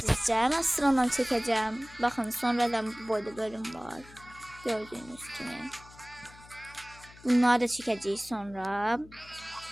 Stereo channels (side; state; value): left; noise; hum, 21 dB below the sound